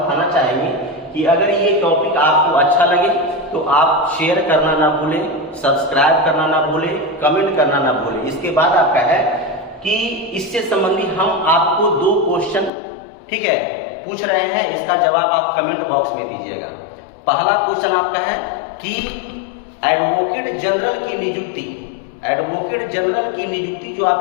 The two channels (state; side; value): drops out; right; at 12.7 s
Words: चाहेंगे कि अगर ये टॉपिक आपको अच्छा लगे तो आप शेयर करना ना भूलें, सब्सक्राइब करना ना भूलें, कमेंट करना ना भूलें। इसके बाद आपका है कि इससे संबंधित हम आपको 2 क्वेश्चन, ठीक है, पूछ रहे हैं, इसका जवाब आप कमेंट बॉक्स में दीजिएगा। पहला क्वेश्चन आपका है कि एडवोकेट जनरल की नियुक्ति, एडवोकेट जनरल की नियुक्ति जो